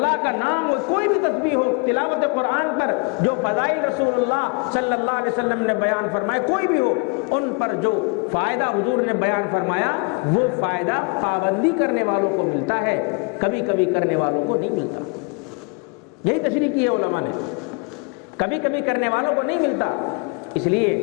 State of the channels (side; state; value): right; quieter; 33.5 dB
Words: کا نام ہو، کوئی بھی تسبیح ہو، تلاوت قرآن پر جو فضائل رسول اللہ صلی اللہ علیہ وسلم نے بیان فرمائے کوئی بھی ہو، ان پر جو فائدہ حضور نے بیان فرمایا وہ فائدہ پابندی کرنے والوں کو ملتا ہے، کبھی کبھی کرنے والوں کو نہیں ملتا۔ یہی تشریح کی ہے علماء نے، کبھی کبھی کرنے والوں کو نہیں ملتا۔ اس